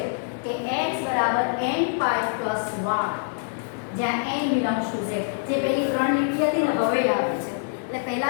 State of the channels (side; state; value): right; silent; digital silence